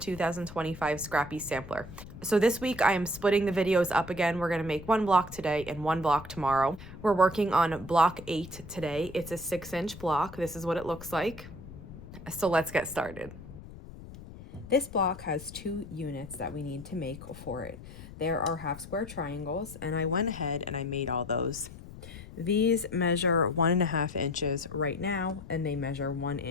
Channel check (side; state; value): left; noise; rumble, 15 dB below the sound